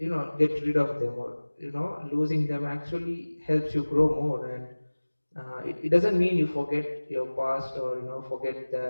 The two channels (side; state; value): both; inverted; correlation -1.00